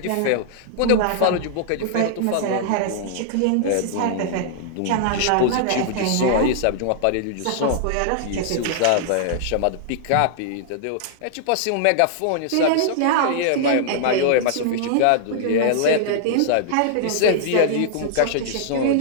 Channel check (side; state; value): both; different; correlation -0.01